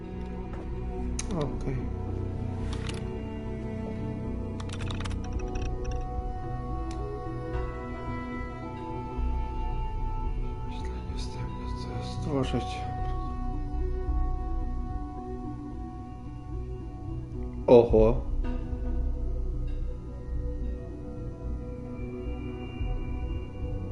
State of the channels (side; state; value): both; identical; correlation 1.00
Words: Okej. Stworzyć. Oho.